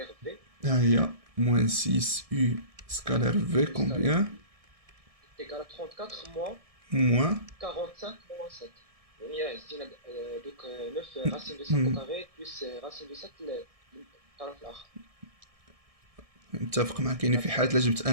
v ها هي موان 6 يو سكالير في كومبيان est égal à 34 moins موان 45 moins 7. يعني زدنا دوك 9 racine de 5 au carré plus racine de 7 الطرف الآخر. متفق معك. يعني في حالة لا جبت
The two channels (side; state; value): left; late; 1.6 ms